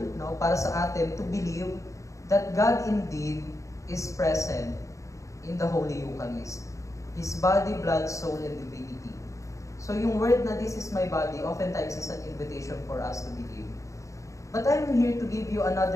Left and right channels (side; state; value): right; late; 0.15 ms